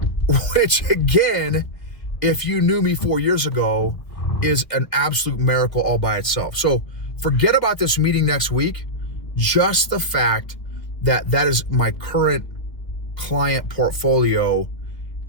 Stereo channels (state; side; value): late; right; 2.3 ms